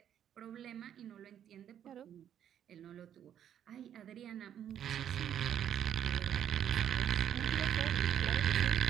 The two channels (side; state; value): left; quieter; 9.8 dB